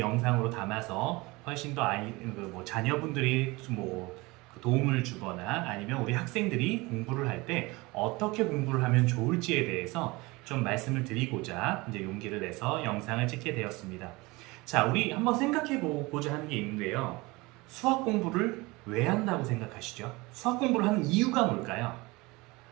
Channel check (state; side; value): quieter; left; 23.2 dB